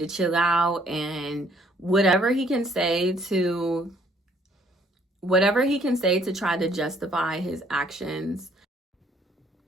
chill out. And whatever he can say to try to justify his actions,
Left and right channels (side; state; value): both; normal; correlation 0.64